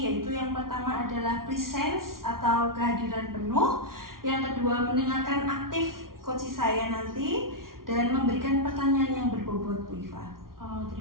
yaitu yang pertama adalah presence atau kehadiran penuh. Yang kedua, mendengarkan aktif coach saya nanti dan memberikan pertanyaan yang berbobot Bu Iva. Oh,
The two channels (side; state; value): left; late; 0.92 ms